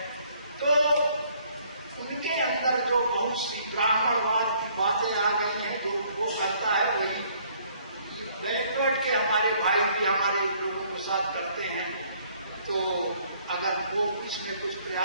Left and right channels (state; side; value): inverted; both; correlation -0.63